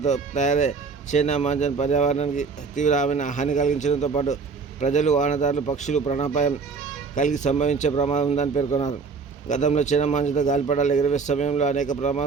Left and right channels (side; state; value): left; quieter; 4.9 dB